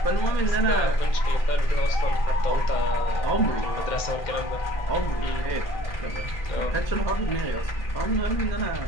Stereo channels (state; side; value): late; right; 2.1 ms